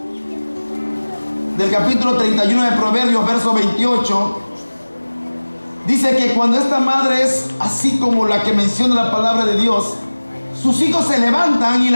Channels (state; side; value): inverted; both; correlation -1.00